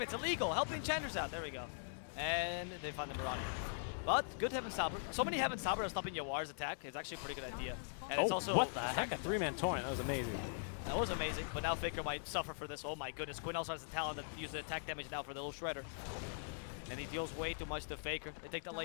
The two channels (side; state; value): right; silent; digital silence